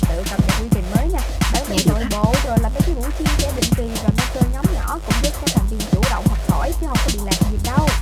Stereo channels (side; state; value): both; identical; correlation 1.00